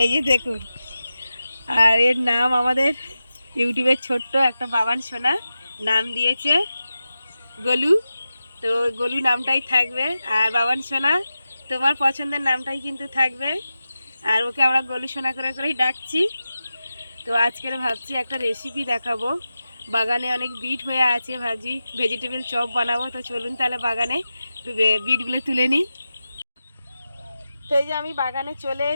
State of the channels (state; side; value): inverted; both; correlation -0.92